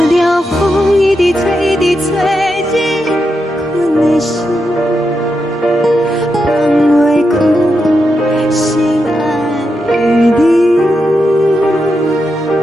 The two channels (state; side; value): normal; both; correlation 0.85